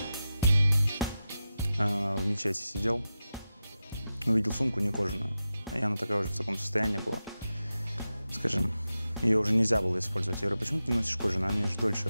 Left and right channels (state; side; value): inverted; both; correlation -0.92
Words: мечети сидел, увидел сумку не кожаную, и она такая уже в таком состоянии была, скажем, ее уже нельзя было использовать. Я говорю, почему ты не носишь кожаную? Она же дольше